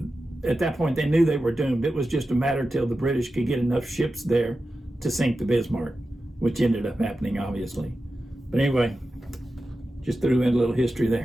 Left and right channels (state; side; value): normal; both; correlation 0.92